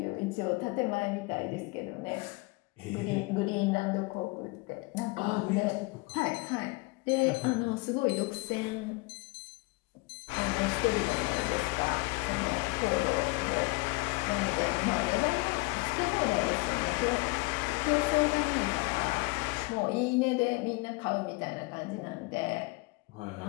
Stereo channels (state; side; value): quieter; right; 25.1 dB